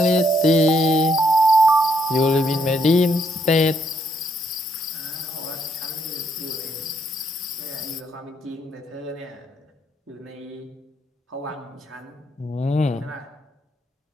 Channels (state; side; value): normal; both; correlation 0.73